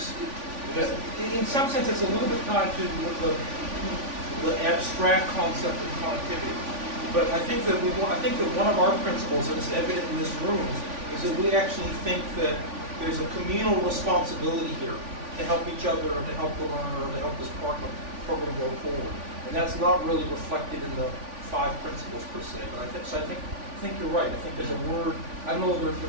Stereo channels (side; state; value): left; late; 3.5 ms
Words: in some sense, it's a little bit tied to the abstract concept of connectivity. But I think that one of our principles, and it's evident in this room, is that we actually think that there's a communal responsibility here to help each other, to help the learner, to help this program go forward. And that's not really reflected in the 5 principles per se. But I think you're right. I think there's a word, I don't know if the